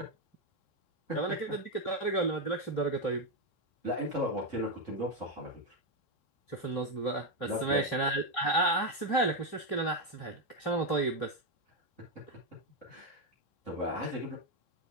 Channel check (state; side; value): late; right; 3.2 ms